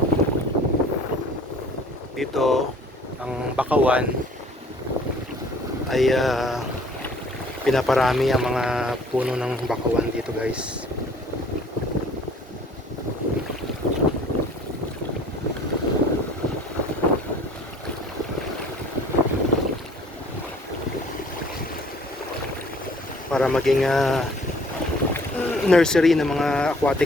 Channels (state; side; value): normal; both; correlation 0.53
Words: Dito, ang Bakawan ay pinaparami ang mga puno ng Bakawan dito guys. Para maging nursery ng mga